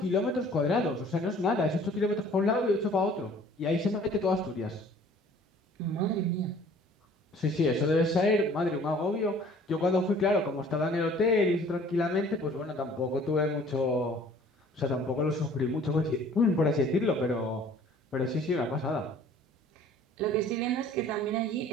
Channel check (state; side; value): normal; both; correlation 0.52